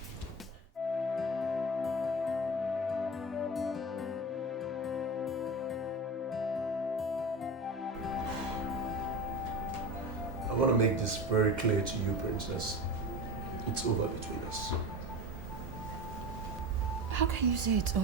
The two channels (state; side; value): normal; both; correlation 0.28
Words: I want to make this very clear to you, Princess. It's over between us. How can you say it's